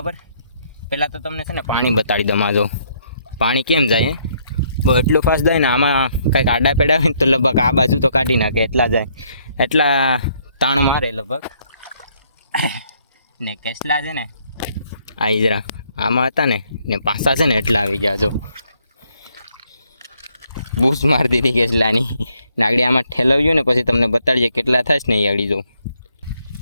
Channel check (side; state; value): both; inverted; correlation -0.70